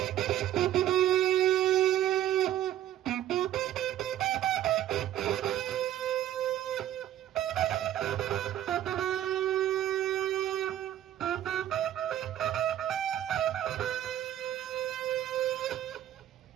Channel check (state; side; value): quieter; left; 12.4 dB